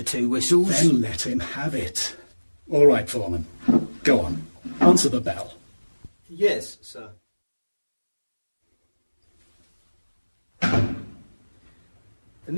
2 whistles... Then let him have it. All right, Foreman. Go on. Answer the bell. Yes, sir.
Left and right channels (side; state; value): both; inverted; correlation -1.00